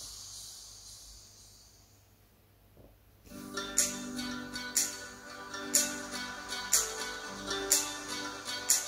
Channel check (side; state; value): both; identical; correlation 1.00